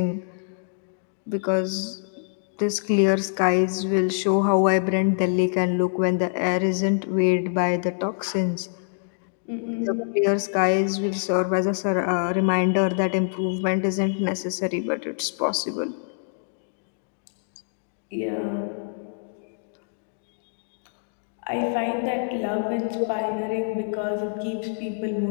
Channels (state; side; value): silent; right; digital silence